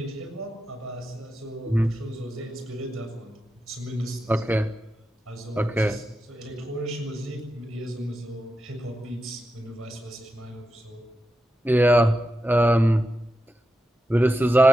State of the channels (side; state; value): both; normal; correlation 0.89